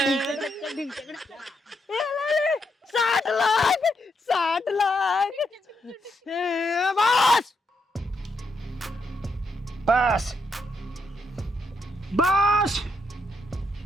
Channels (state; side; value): normal; both; correlation 0.79